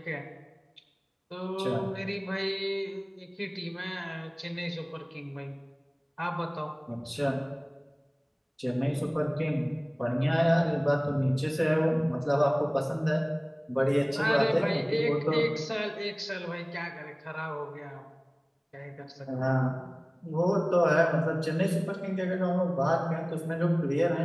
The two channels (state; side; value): identical; both; correlation 1.00